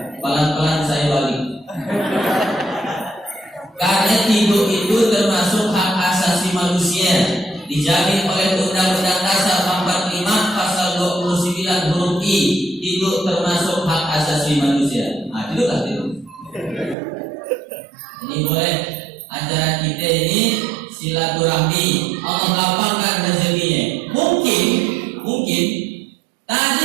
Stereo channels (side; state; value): left; drops out; at 16.9 s